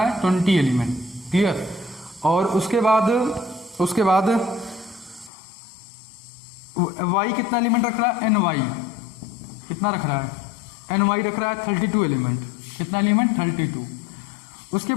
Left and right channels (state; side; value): drops out; right; at 5.3 s